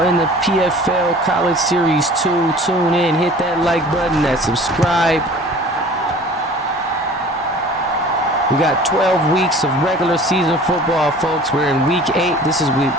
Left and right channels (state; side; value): normal; both; correlation 0.45